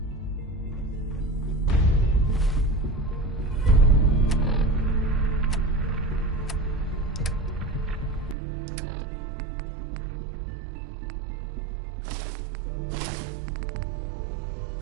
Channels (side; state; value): left; drops out; at 8.3 s